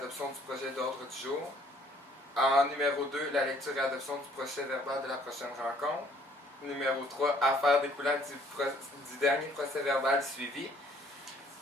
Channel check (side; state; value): both; normal; correlation 0.61